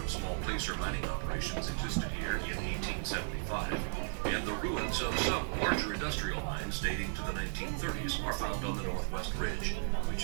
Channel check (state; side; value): silent; left; 54 dB below the other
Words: of small placer mining operations existed here in 1875, and the ruins of some larger industrial mines dating to the 1930s are found on the northwest ridge,